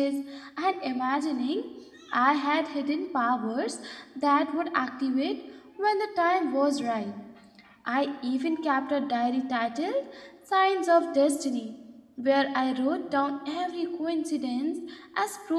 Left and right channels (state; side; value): identical; both; correlation 1.00